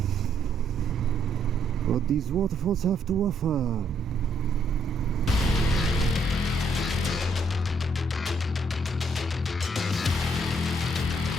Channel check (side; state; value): both; normal; correlation 0.71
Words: what these waterfalls have to offer.